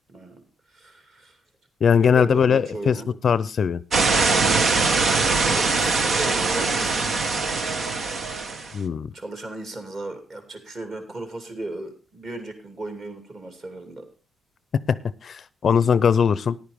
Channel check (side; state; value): both; normal; correlation 0.74